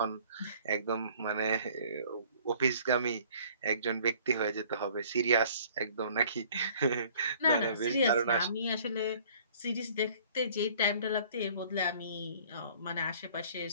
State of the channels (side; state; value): both; inverted; correlation -0.54